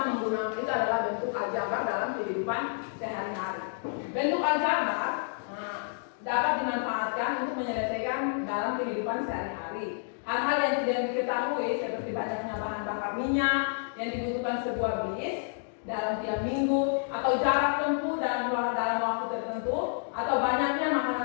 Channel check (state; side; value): silent; right; digital silence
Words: menggunakan, itu adalah bentuk aljabar dalam kehidupan sehari-hari. Bentuk aljabar dapat dimanfaatkan untuk menyelesaikan dalam kehidupan sehari-hari. Hal-hal yang tidak diketahui seperti banyaknya bahan bakar minyak yang dibutuhkan sebuah bis dalam tiap minggu, atau jarak tempuh dalam waktu tertentu, atau banyaknya